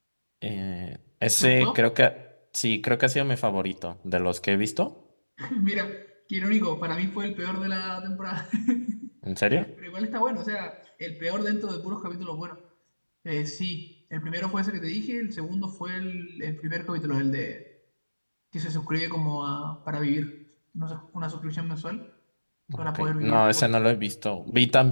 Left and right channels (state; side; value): inverted; both; correlation -1.00